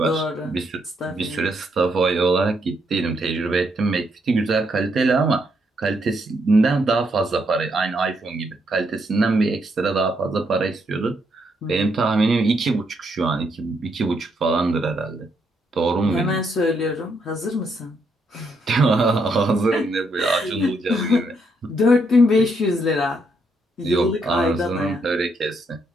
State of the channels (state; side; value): normal; both; correlation 0.76